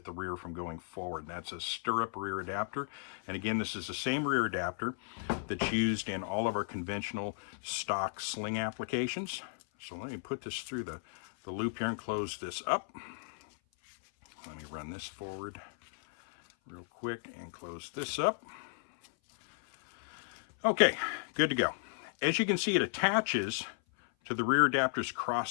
the rear from going forward. That's a Stirrup rear adapter. And again, this is the same rear adapter that's used in all of our conventional stock sling applications. So let me put this through the loop here and close this up. Let me run this forward real quick and close this up. Okay, good to go. As you can see, it attaches to the rear adapter's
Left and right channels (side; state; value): right; silent; 55 dB below the other